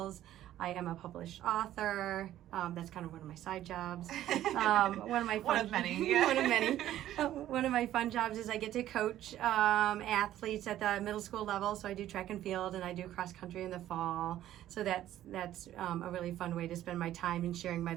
I am a published author. That's kind of one of my side jobs. One of my fun, One of many. Yeah. one of many. One of my fun jobs is I get to coach athletes at the middle school level. So I do track and field, and I do cross country in the fall. So that's a really fun way to spend my time and sharing my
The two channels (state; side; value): quieter; left; 12.9 dB